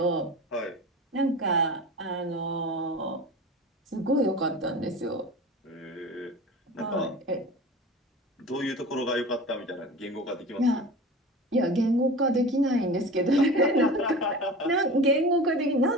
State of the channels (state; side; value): normal; both; correlation 0.35